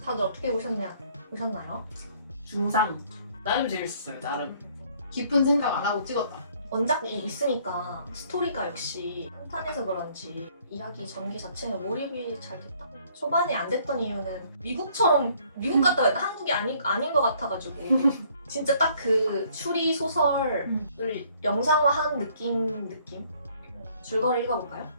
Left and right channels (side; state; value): both; inverted; correlation -0.62